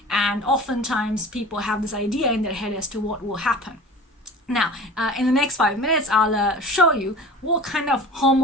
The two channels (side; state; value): both; normal; correlation 0.39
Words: and oftentimes people have this idea in their head as to what will happen. Now, in the next 5 minutes, I'll show you what kind of Home